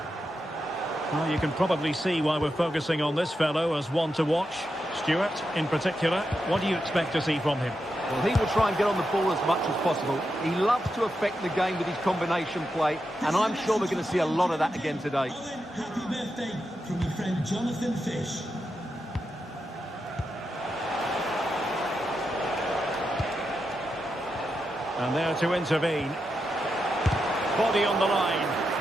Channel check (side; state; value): both; normal; correlation 0.87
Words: Well, you can probably see why we're focusing on this fellow as one to watch. Stuart, in particular, what do you expect to see from him? Well, he will try and get on the ball as much as possible. He loves to affect the game with his combination play, and I'm sure we're going to see a lot of that again today. Happy birthday from your friend Jonathan Fish. And there to intervene. Body on the line.